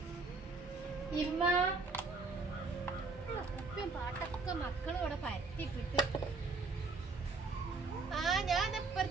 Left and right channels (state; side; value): quieter; left; 3.9 dB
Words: ഇമ്മ ഉപ്പയും പാട്ടൊക്കെ മക്കളും ഇവിടെ പരത്തിട്ടിട്ട്. ഞാൻ